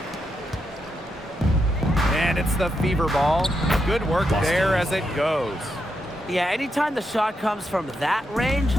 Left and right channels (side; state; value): both; normal; correlation 0.83